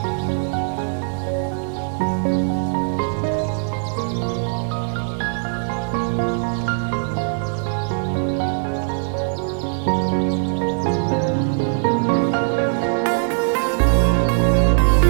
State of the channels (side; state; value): left; silent; digital silence